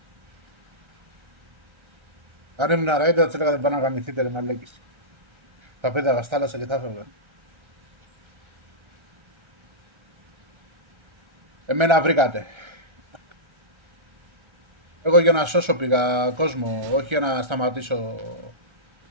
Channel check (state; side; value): late; left; 1.3 ms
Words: Αν ήμουν Ryzen θα της έλεγα δεν πάνε να γαμηθείτε ρε μαλέκης. Θα πέταγα στα θάλασσα και θα έφευγα. Εμένα βρήκατε. Εγώ για να σώσω πήγα κόσμο, όχι για να σταματήσω.